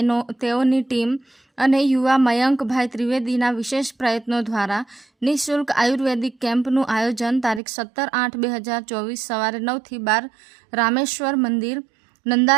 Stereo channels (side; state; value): left; drops out; at 7.6 s